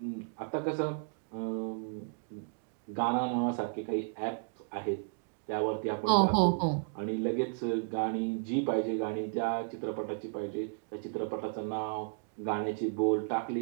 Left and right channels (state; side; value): silent; left; digital silence